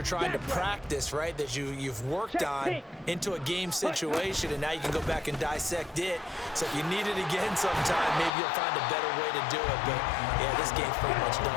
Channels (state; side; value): drops out; right; at 8.3 s